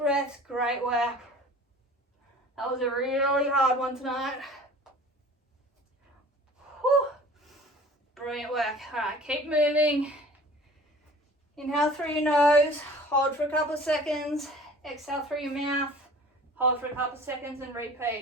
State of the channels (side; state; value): both; normal; correlation 0.45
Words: great work. That was a really hard one tonight. Whew. Brilliant work. All right, keep moving. Inhale through your nose, hold for a couple of seconds, exhale through your mouth, hold for a couple of seconds and